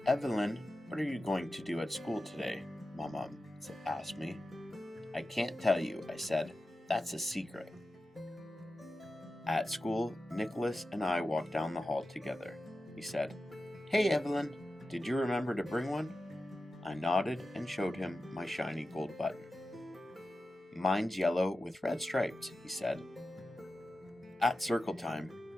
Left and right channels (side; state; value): both; normal; correlation 0.93